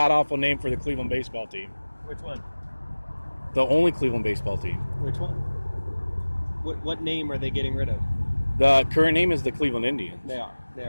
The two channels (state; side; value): inverted; both; correlation -1.00